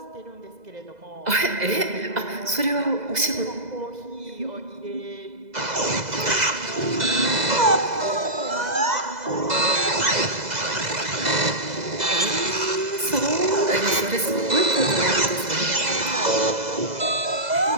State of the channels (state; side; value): late; left; 2.0 ms